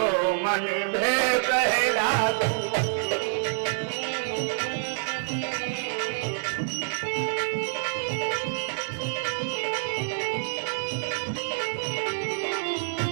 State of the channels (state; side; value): silent; left; digital silence